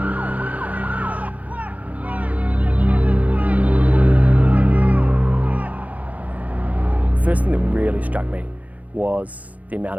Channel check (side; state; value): left; late; 0.073 ms